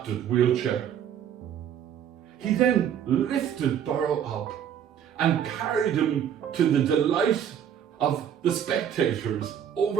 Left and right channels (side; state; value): left; quieter; 9.0 dB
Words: wheelchair. He then lifted Burrow up and carried him to the delight of the spectators